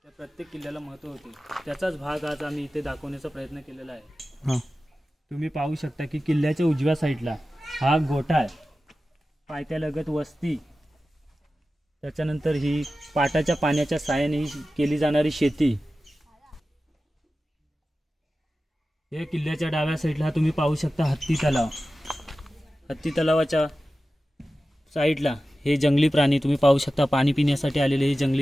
प्रत्येक किल्ल्याला महत्त्व होते। त्याचाच भाग आज आम्ही इथे दाखवण्याचा प्रयत्न केलेला आहे। तुम्ही पाहू शकता की किल्ल्याच्या उजव्या साईडला हा गोठा आहे, पायथ्यालगत वस्ती, त्याच्यानंतर ही पाटाच्या पाण्याच्या साहाय्याने केली जाणारी शेती। या किल्ल्याच्या डाव्या साईडला तुम्ही पाहू शकता हत्ती तलाव। हत्ती तलावाच्या साईडला हे जंगली प्राणी तुम्ही पाहू शकता, पाणी पिण्यासाठी आलेले हे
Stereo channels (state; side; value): normal; both; correlation 0.95